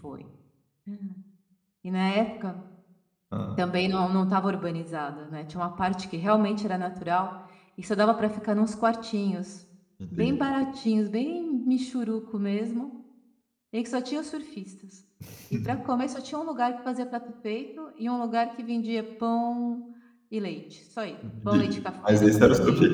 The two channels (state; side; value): identical; both; correlation 1.00